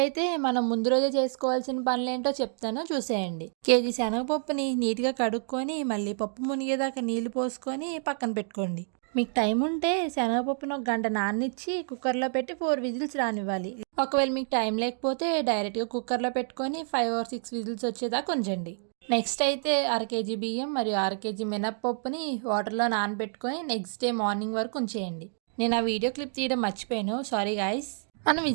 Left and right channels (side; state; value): left; silent; 59 dB below the other